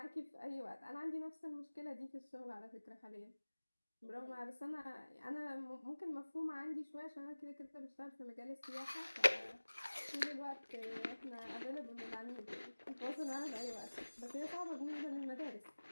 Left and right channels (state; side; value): inverted; both; correlation -1.00